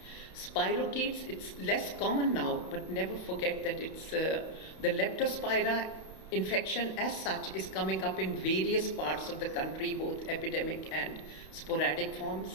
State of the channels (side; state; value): right; late; 31 ms